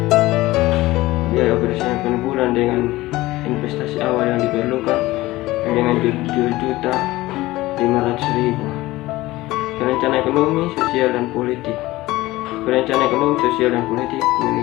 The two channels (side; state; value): right; quieter; 18.4 dB